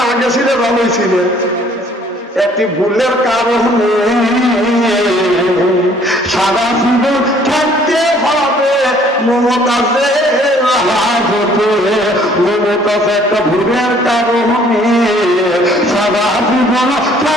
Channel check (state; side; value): normal; both; correlation 0.59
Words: আগে ছিলে ভালোই ছিলে, একটি ভুলের কারণে সারা জীবন থাকতে হবে মমতাজের হাজতে। মমতাজ একটা ভুলের কারণে সারা জীবন